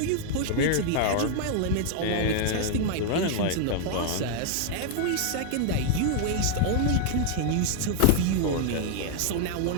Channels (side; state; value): both; different; correlation 0.00